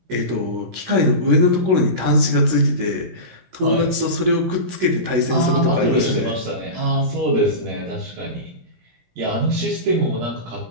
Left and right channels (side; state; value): left; late; 16 ms